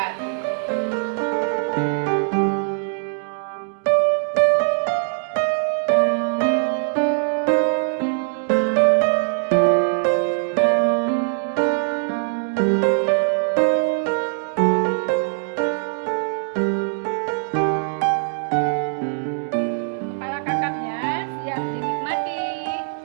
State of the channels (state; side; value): silent; left; digital silence